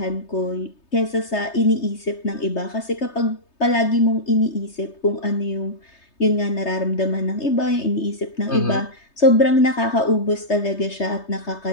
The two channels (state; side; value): late; right; 3.3 ms